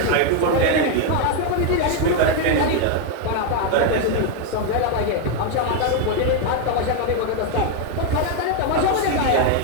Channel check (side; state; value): both; different; correlation 0.01